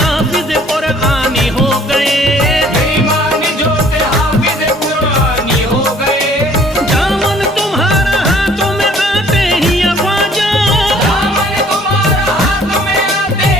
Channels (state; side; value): normal; both; correlation 0.57